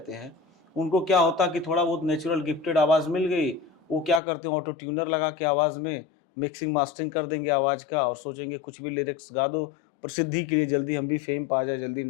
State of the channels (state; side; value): drops out; right; at 4.2 s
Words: हैं, उनको क्या होता कि थोड़ा बहुत नेचुरल गिफ्टेड आवाज़ मिल गई, वो क्या करते हैं, ऑटो ट्यूनर लगा के आवाज़ में मिक्सिंग मास्टरिंग कर देंगे आवाज़ का, और सोचेंगे कुछ भी लिरिक्स गा दो प्रसिद्धि के लिए, जल्दी हम भी फेम पा जाए, जल्दी